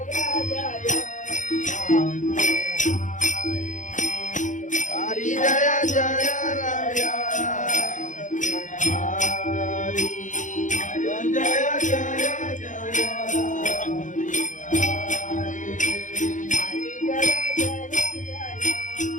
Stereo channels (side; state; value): right; late; 0.37 ms